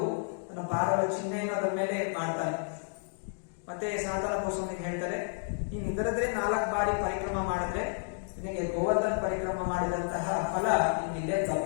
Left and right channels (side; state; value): right; silent; digital silence